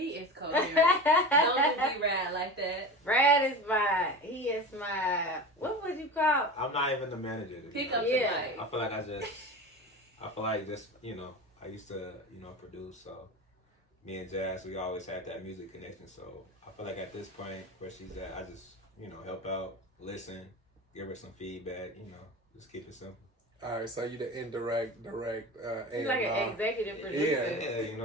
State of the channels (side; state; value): both; normal; correlation 0.30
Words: is coherent. Don't be Rad like that. Brad is he is my, what would you call? I'm not even the manager. Pick up Yeah. I feel like you know, I used to, you know, produce, so me and Jazz, we always had that music connection, so I feel like at this point where she's at, I just, you know, help out, listen, give her some feedback, you know, just keep it simple. All right, so you the indirect, direct, He's like an executive producer. Yeah, you